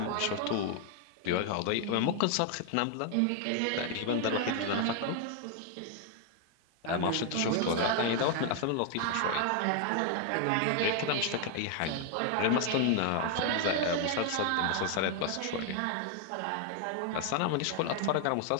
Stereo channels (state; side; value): different; both; correlation 0.00